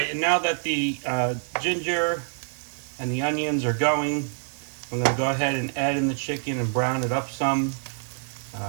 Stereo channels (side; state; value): left; silent; 61 dB below the other